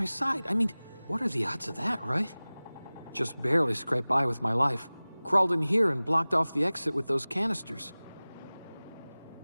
side. I mean, what are the odds of that, right? Just barely scraped by with my life. Crawled in here and blocked off the exit with those canisters.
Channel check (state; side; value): inverted; both; correlation -0.99